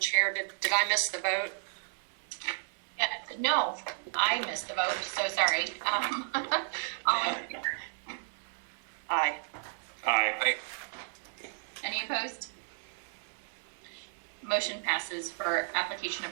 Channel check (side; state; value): left; silent; 56 dB below the other